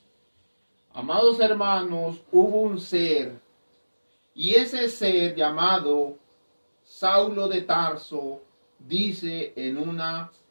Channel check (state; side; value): inverted; both; correlation -1.00